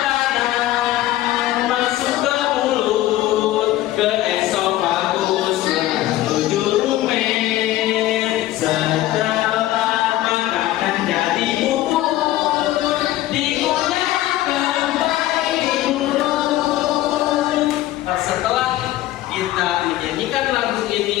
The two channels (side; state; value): right; quieter; 15.1 dB